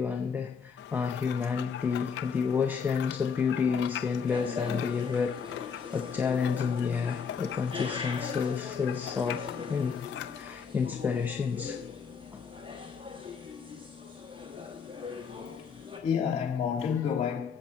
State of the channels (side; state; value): right; quieter; 6.1 dB